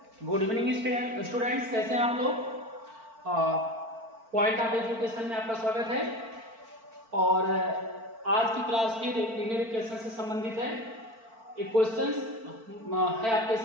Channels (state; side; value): late; left; 4.5 ms